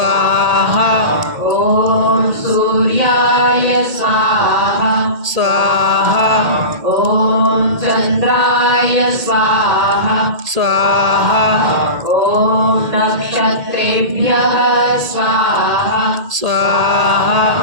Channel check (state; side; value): late; left; 2.1 ms